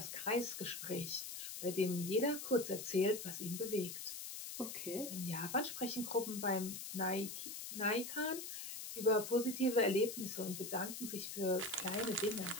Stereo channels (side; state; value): left; noise; hiss, 7 dB below the sound